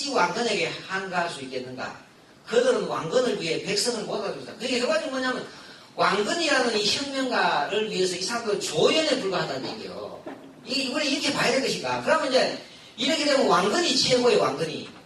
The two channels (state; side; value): identical; both; correlation 1.00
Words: 왕건에게 한가할 수 있겠는가? 그들은 왕건을 위해 백성을 모아줍니다. 그게 결과적으로 뭐냐면 왕건이라는 이 혁명가를 위해서 이 사람들은 조연에 불과하다는 얘기예요. 이걸 이렇게 봐야 될 것인가? 그러면 이제 이렇게 되면 왕건이 최고의 왕건이.